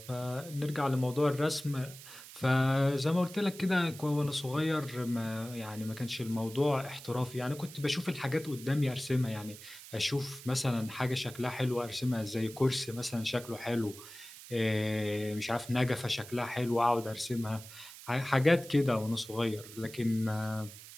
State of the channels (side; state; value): right; noise; hiss, 16 dB below the sound